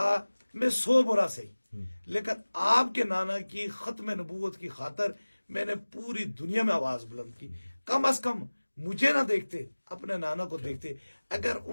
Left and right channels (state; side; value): inverted; both; correlation -1.00